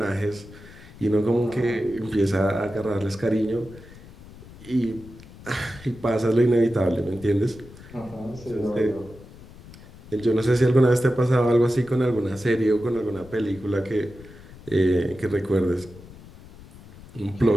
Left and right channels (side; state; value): left; noise; rumble, 19 dB below the sound